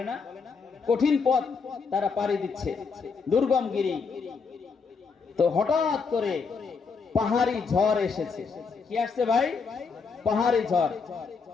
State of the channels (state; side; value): quieter; right; 5.1 dB